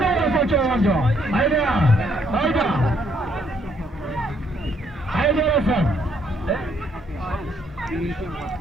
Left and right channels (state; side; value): normal; both; correlation 0.70